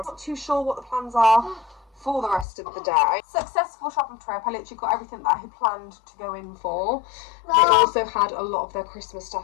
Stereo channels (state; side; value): drops out; right; at 2.5 s